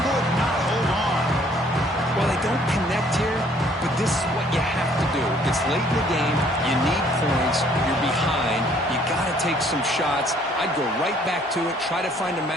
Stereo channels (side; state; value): both; normal; correlation 0.61